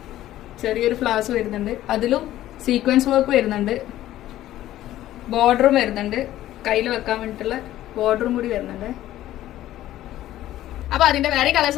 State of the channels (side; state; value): right; quieter; 13.9 dB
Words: ചെറിയൊരു ഫ്ലവേഴ്സ് വരുന്നുണ്ട്, അതിലും സീക്വൻസ് വർക്ക് വരുന്നുണ്ട്. ബോർഡറും വരുന്നുണ്ട്, കയ്യിൽ വെക്കാൻ വേണ്ടിയിട്ടുള്ള ബോർഡറും കൂടി വരുന്നുണ്ട്. അപ്പൊ അതിന്റെ വേറെ കളേഴ്സ്